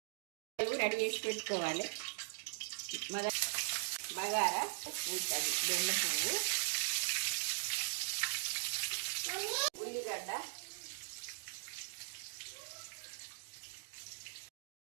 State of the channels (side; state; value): left; silent; digital silence